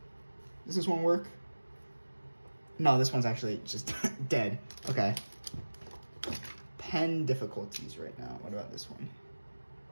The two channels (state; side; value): inverted; both; correlation -1.00